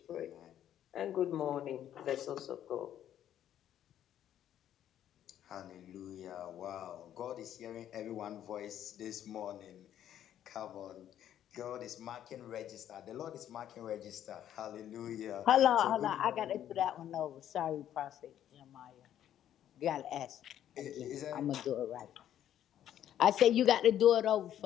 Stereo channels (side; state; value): right; quieter; 11.0 dB